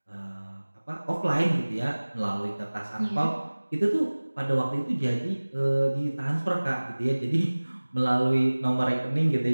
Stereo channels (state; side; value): inverted; both; correlation -1.00